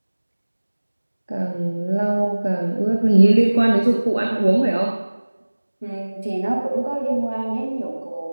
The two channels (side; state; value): both; inverted; correlation -1.00